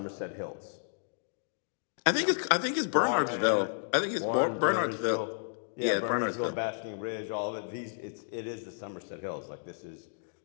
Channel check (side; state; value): right; silent; digital silence